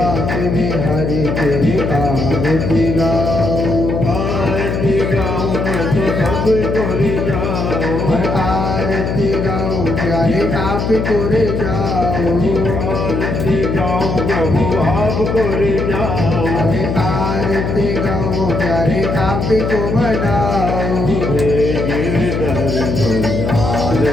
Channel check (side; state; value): left; noise; hum, 1 dB below the sound